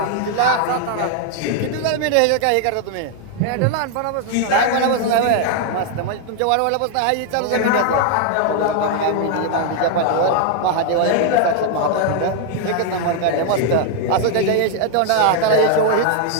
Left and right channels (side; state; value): both; different; correlation 0.00